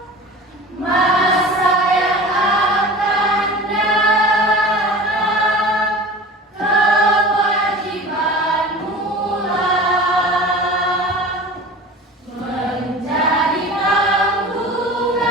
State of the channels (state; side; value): normal; both; correlation 0.37